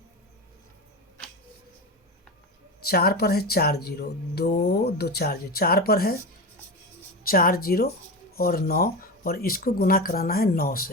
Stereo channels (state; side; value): normal; both; correlation 0.22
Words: 4 पर है 4 जीरो, 2 2 4 जीरो, 4 पर है 4 जीरो और 9, और इसको गुना कराना है 9